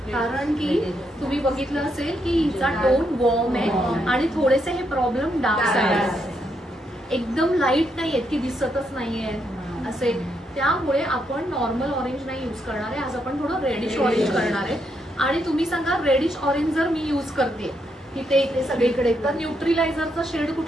कारण की तुम्ही बघितलं असेल की हिचा टोन वॉर्म आहे आणि थोडेसे हे प्रॉब्लेम डार्क साईड, एकदम लाईट नाहीयेत की दिसतच नाहीये असे. त्यामुळे आपण नॉर्मल ऑरेंज नाही युज करणार आहे, आज आपण थोडं रेडिश ऑरेंज करणार आहे. आणि तुम्ही सांगा, रेडिश ऑरेंज जर मी युज करते इथे इथे सगळीकडे, तर न्यूट्रिलायझरचा शेड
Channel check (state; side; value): normal; both; correlation 0.78